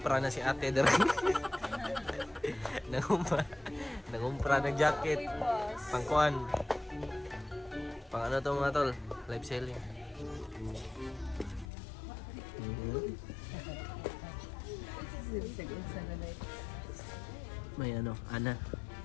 na si ate dere. Nangumpra ng jacket. Pangkuan. Pang ano to mga tol? Live selling. May ano, Ana.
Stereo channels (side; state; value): right; drops out; at 11.7 s